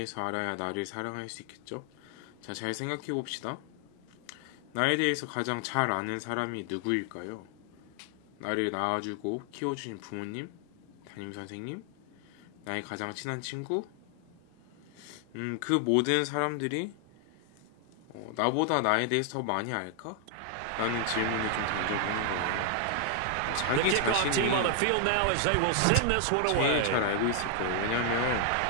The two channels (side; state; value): both; different; correlation 0.00